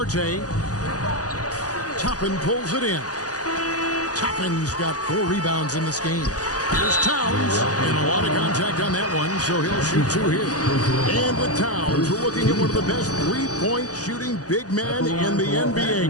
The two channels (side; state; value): right; late; 0.67 ms